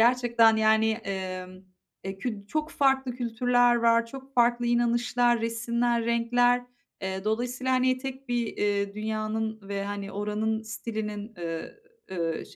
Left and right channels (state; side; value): identical; both; correlation 1.00